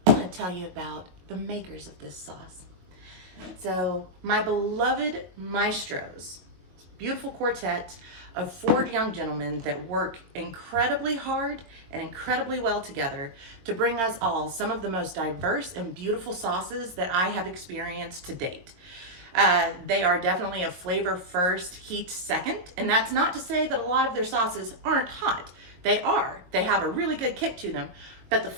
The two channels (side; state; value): left; late; 22 ms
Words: I want to tell you about the makers of this sauce. So, my beloved Maestros, beautiful quartet of 4 young gentlemen that work incredibly hard and incredibly well together to bring us all some of the most diverse and beautiful sauces that I have experienced to date. They are definitely a flavor first, heat second, and that's not to say that a lot of their sauces aren't hot. They are. They have a really good kick to them, but the